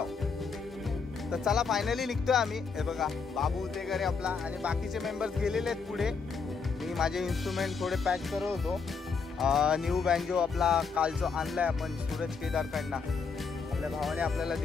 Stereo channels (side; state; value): right; quieter; 5.2 dB